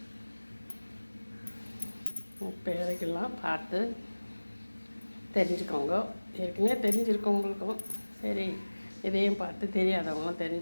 இப்போ இறக்கலாம். பார்த்து தெரிஞ்சுக்கோங்க. ஏற்கனவே தெரிஞ்சிருக்கவங்களுக்கும் சரி, இதையும் பார்த்து தெரியாதவங்களும்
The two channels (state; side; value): inverted; both; correlation -1.00